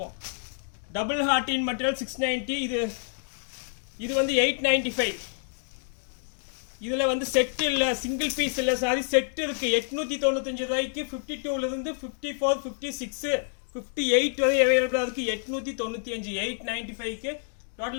Double heart material 690. இது வந்து 895. இதில் வந்து செட் இல்லை, சிங்கிள் பீஸ் இல்லை, சாரி செட் இருக்கு. 895 ரூபாய்க்கு 52ல இருந்து 54 56 58 வரை அவைலபிளாக இருக்கு. 895 895க்கு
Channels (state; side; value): silent; right; digital silence